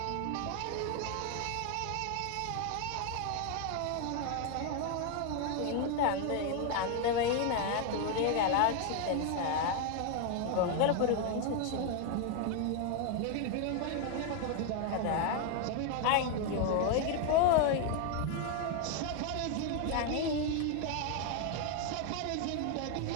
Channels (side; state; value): both; different; correlation 0.01